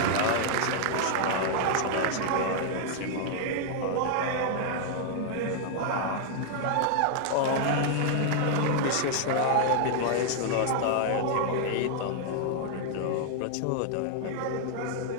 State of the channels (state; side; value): different; both; correlation 0.00